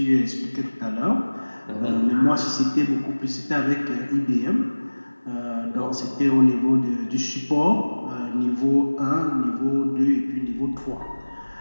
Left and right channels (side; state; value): both; inverted; correlation -1.00